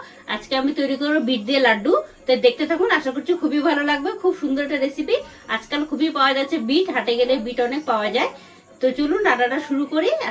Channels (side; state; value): both; identical; correlation 1.00